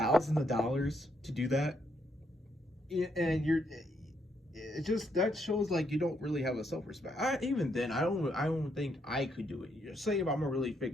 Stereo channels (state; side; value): normal; both; correlation 0.76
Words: of dollars to do that, and it just, that shows like you don't really have a self-respect. Even then, I don't think I could do it. Say if I'm a really